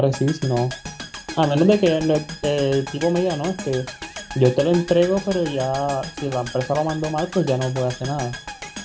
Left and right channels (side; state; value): both; identical; correlation 1.00